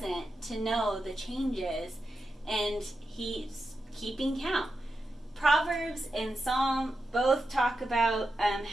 to know the changes and he's keeping count. Proverbs and Psalm both talk about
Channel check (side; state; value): both; normal; correlation 0.89